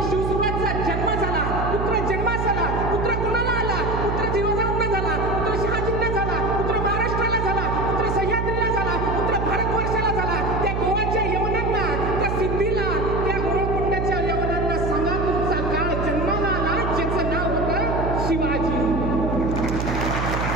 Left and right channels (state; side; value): noise; right; hum, 1 dB below the sound